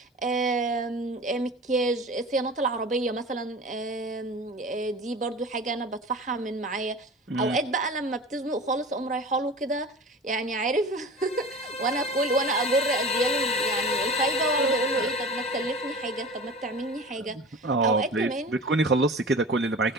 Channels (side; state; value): both; normal; correlation 0.37